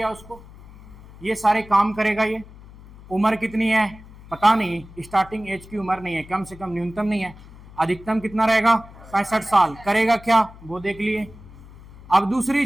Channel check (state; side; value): noise; left; hum, 20 dB below the sound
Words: उसको, ये सारे काम करेगा। ये उम्र कितनी है पता नहीं, स्टार्टिंग एज की उम्र नहीं है, कम से कम न्यूनतम नहीं है, अधिकतम कितना रहेगा? 65 साल। करेगा क्या वो देख लिए। अब दूसरी